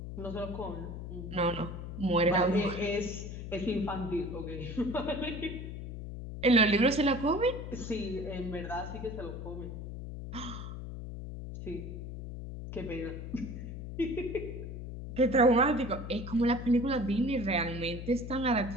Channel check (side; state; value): left; noise; hum, 8 dB below the sound